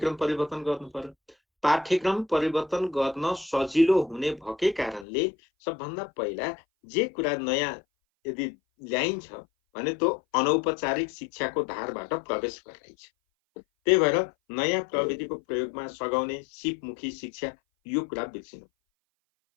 परिवर्तन गर्नु पर्यो। पाठ्यक्रम परिवर्तन गर्न सजिलो हुने भएकै कारणले सबभन्दा पहिला जे कुरा नयाँ यदि ल्याइन्छ भने त्यो अनौपचारिक शिक्षाको धारबाट प्रवेश गराइन्छ। त्यही भएर नयाँ प्रविधिको प्रयोगमा सघाउने सिपमुखी शिक्षा, यो कुरा बिर्सिनु।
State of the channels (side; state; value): right; drops out; at 5.1 s